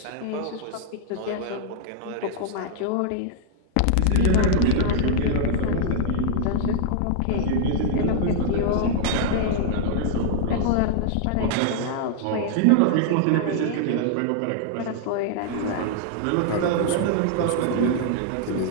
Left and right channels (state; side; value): different; both; correlation -0.01